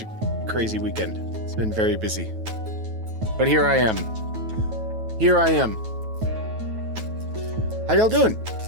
a crazy weekend. It's been very busy. But here I am. Here I am. How y'all doing?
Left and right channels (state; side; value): late; left; 9.2 ms